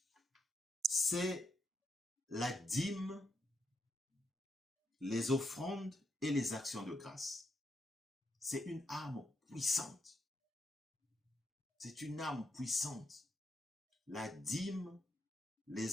c'est la dîme, les offrandes et les actions de grâce. C'est une arme puissante. C'est une arme puissante. La dîme,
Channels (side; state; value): both; normal; correlation 0.80